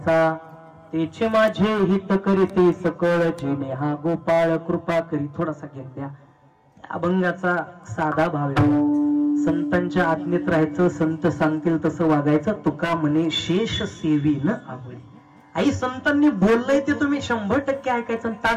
तेचे माझे हित करीते सकळ जेणे हा गोपाळ कृपा करी. थोडासा घेऊन द्या. अभंगाचा साधा भाव आहे. संतांच्या आज्ञेत राहायचं, संत सांगतील तसं वागायचं. तुका म्हणे शेष सेवी न आवळे. आई संतांनी बोललंय ते तुम्ही 100% ऐकायचं.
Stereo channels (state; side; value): identical; both; correlation 1.00